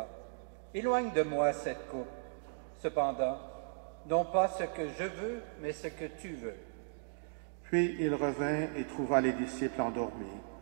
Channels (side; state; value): left; silent; digital silence